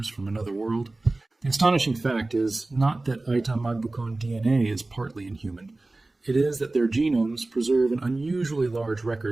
from another world. The astonishing fact is not that Ayta Magbukon DNA is partly inhuman. It is that their genomes preserve an unusually large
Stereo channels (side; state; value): left; quieter; 3.0 dB